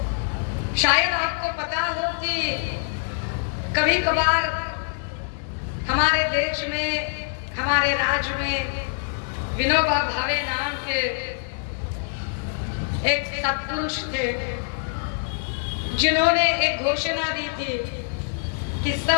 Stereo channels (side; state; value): right; silent; digital silence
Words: शायद आपको पता हो कि कभी कभार हमारे देश में, हमारे राज्य में विनोबा भावे नाम के एक सत्पुरुष थे जिन्होंने एक घोषणा दी थी कि